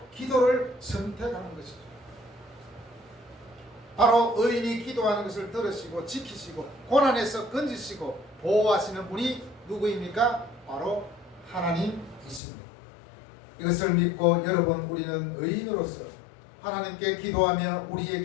기도를 선택하는 것이죠. 바로 의인이 기도하는 것을 들으시고 지키시고 고난에서 건지시고 보호하시는 분이 누구입니까? 바로 하나님이십니다. 이것을 믿고 여러분 우리는 의인으로서 하나님께 기도하며 우리의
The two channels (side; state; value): right; drops out; at 12.4 s